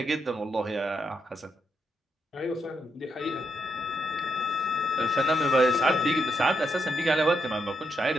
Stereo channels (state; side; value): normal; both; correlation 0.80